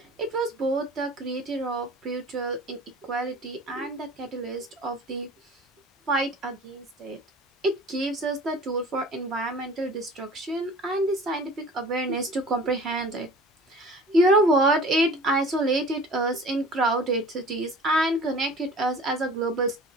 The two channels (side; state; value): both; normal; correlation 0.43